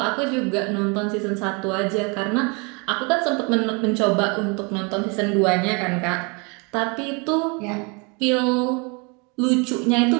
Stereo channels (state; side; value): quieter; left; 31.1 dB